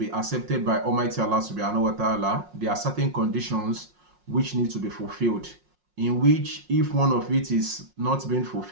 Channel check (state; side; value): late; left; 5.5 ms